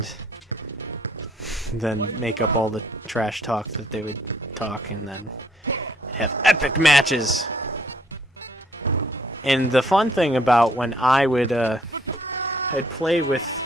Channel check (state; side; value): normal; both; correlation 0.65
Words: then make up all the trash talk that they would talk, and then have epic matches. And the fun thing about when I would I'd play with